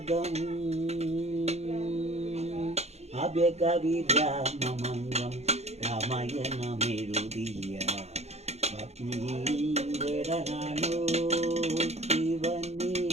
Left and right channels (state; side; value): late; left; 0.31 ms